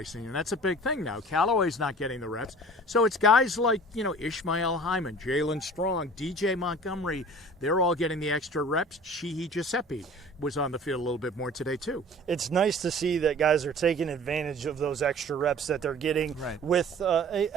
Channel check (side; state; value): both; normal; correlation 0.45